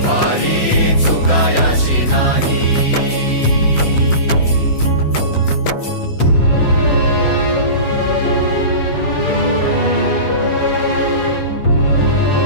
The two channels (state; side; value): late; right; 7.6 ms